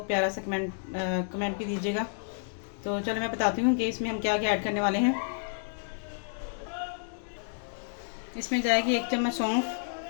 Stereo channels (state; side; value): silent; right; digital silence